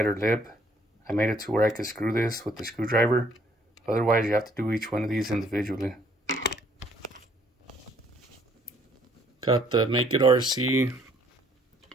lip, I made it to where I could screw this with the screwdriver. Otherwise, you have to do each one of these individually. Got the Make It RC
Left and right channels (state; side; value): normal; both; correlation 0.64